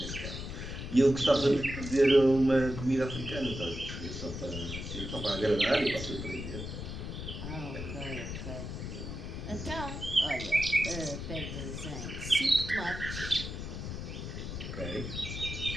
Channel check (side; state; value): left; noise; rumble, 7 dB below the sound